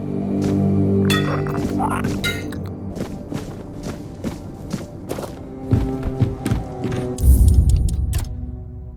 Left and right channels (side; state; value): both; identical; correlation 1.00